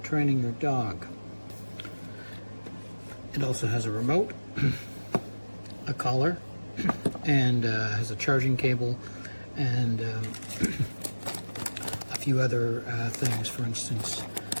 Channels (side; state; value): both; inverted; correlation -1.00